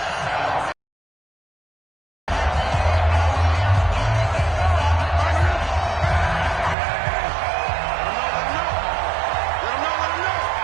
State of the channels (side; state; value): left; drops out; at 6.8 s